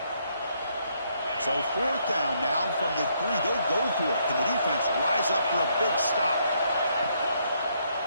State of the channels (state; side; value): inverted; both; correlation -0.72